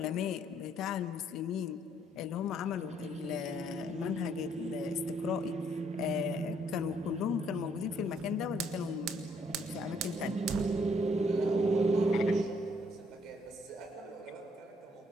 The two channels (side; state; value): both; normal; correlation 0.67